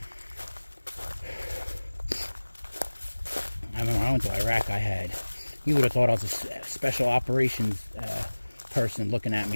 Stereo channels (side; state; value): both; inverted; correlation -1.00